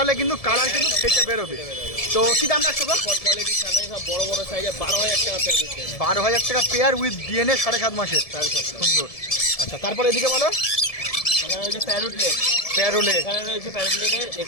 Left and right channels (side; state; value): right; late; 1.7 ms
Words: কিন্তু কালার কিন্তু ফেটে বেরোবে। তো কি দাম রাখছো গো? কোয়ালিটির সামনে সব বড় বড় সাইজে 12,000 টাকা পেয়ার দিচ্ছে। 12,000 টাকা পেয়ার উইথ ডিএনএ 7.5 মাসের, সুন্দর। আচ্ছা, তারপর এদিকে বলো। এখানে রয়েছে প্যারোটলেট, প্যারোলে এখানে রয়েছে প্যারোটলেটে,